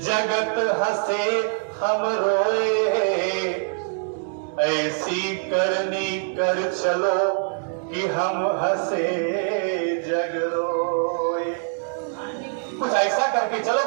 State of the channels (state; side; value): silent; left; digital silence